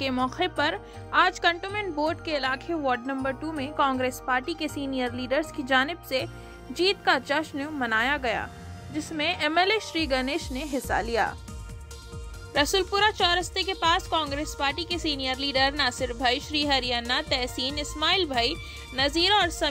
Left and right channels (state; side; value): identical; both; correlation 1.00